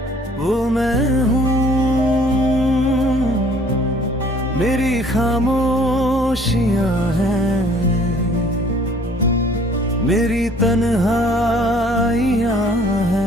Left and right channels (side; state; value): both; normal; correlation 0.56